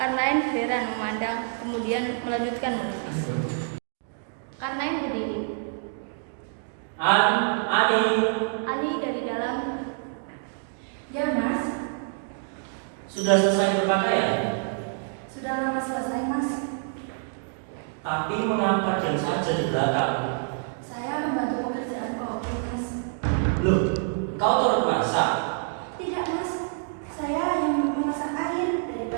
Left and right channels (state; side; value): silent; left; digital silence